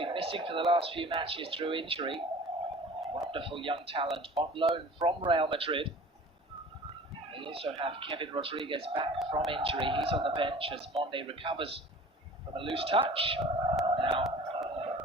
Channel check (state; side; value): normal; both; correlation 0.44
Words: missing for the last few matches through injury. Wonderful young talent on loan from Real Madrid. They also have Kevin Rodriguez back from injury. He's on the bench as Monde recovers from a loose touch. Now